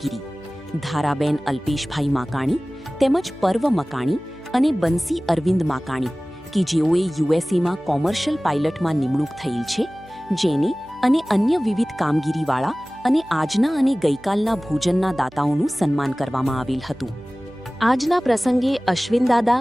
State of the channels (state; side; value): noise; right; hum, 26 dB below the sound